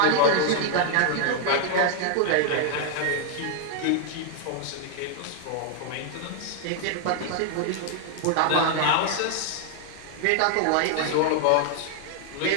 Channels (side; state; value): both; different; correlation 0.00